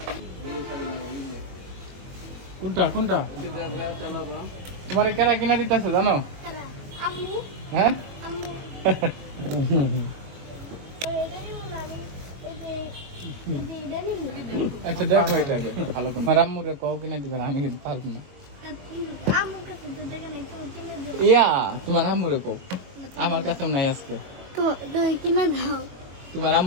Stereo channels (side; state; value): left; late; 22 ms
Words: কোনটা কোনটা তোমার কেরা কিনা দিতেছে জানো? কারা? আম্মু, হ্যাঁ আম্মু। এটা নিব না আমি, এই যে এটা নিব। আচ্ছা দেখো এটাকে ভালো করে আমার আম্মুরে কও কিনা দিবে আমি কিন্তু পারবো না। আম্মুর কাছে তো দেখে নাই, তো কিনে দাও। ইয়া তোমার আম্মুরে কও, আমার কাছে নাই আজকে। তো তুমি কিনে দাও। তোমার